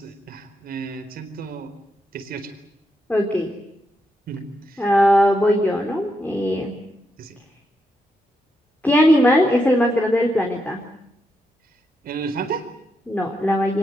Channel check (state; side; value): normal; both; correlation 0.82